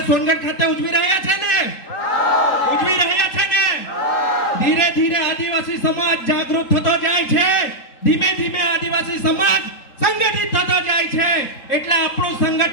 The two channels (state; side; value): late; right; 3.8 ms